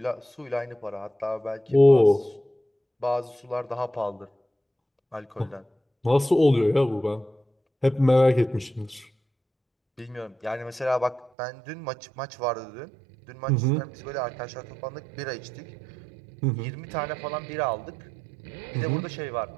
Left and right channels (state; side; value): drops out; left; at 11.3 s